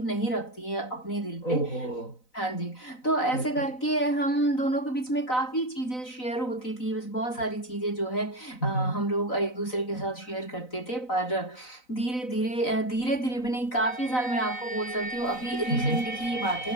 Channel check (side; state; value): right; late; 4.0 ms